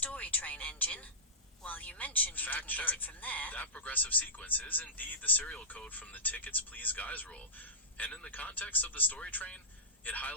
train engine. While you mentioned you Fact didn't get check. it from there, That progressive sequence is indeed the serial code from the Tickets Please Guys rule, and in the context of the story train, it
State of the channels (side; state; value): both; normal; correlation -0.19